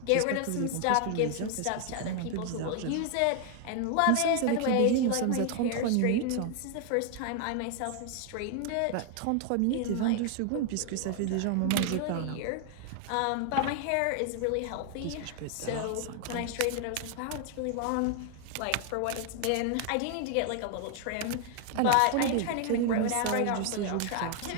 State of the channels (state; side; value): different; both; correlation 0.00